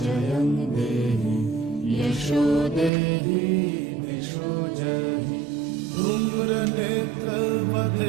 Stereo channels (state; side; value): drops out; left; at 2.9 s